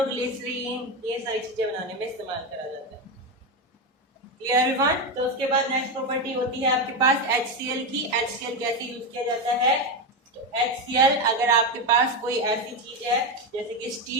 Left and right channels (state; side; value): normal; both; correlation 0.12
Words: ये सारी चीजें बनाने में इस्तेमाल करा जाता है। Clear everyone? तो उसके बाद नेक्स्ट प्रॉपर्टी होती है आपके पास HCl की। HCl कैसे यूज किया जाता है, तो HCl अगर आपके पास कोई ऐसी चीज है जैसे कि